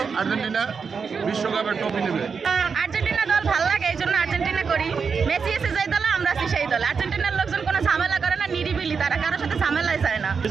আর্জেন্টিনা বিশ্বকাপের ট্রফি নেবে। আর্জেন্টিনা দল ভালো লাগে, এই জন্য আর্জেন্টিনা করি। মেসি এসে যেই দলে আমরা আছি সেই দলে। আর্জেন্টিনার লোকজন কোনো ঝামেলা করে না, নিরিবিলি, তারা কারোর সাথে ঝামেলাই যায় না।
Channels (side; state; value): left; quieter; 5.7 dB